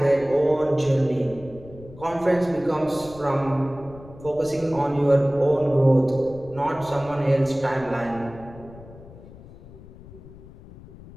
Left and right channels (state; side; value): noise; left; rumble, 19 dB below the sound